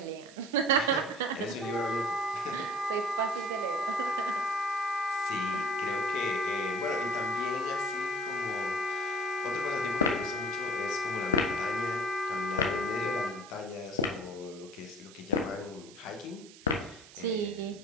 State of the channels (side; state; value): right; noise; hiss, 20 dB below the sound